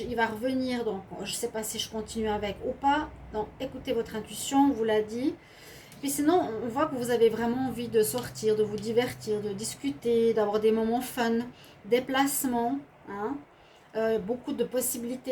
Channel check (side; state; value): both; identical; correlation 1.00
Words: va revenir. Donc, je ne sais pas si je continue avec ou pas. Donc, écoutez votre intuition, on vous l'a dit. Puis sinon, on voit que vous avez vraiment envie de sortir, de vous divertir, de discuter, d'avoir des moments fun, déplacements. Hein. Beaucoup de